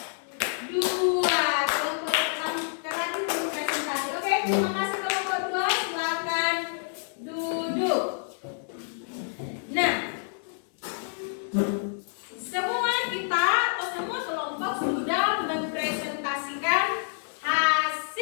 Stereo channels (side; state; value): right; silent; 59 dB below the other